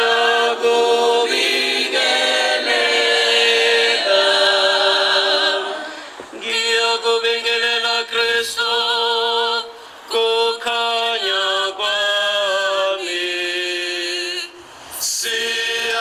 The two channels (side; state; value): both; identical; correlation 1.00